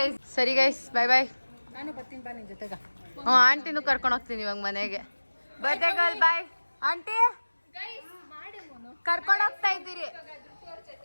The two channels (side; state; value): both; inverted; correlation -1.00